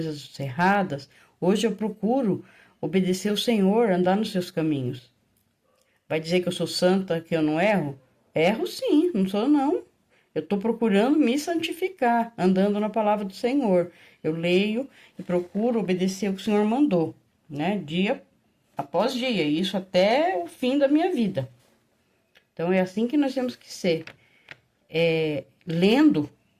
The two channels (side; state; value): both; identical; correlation 1.00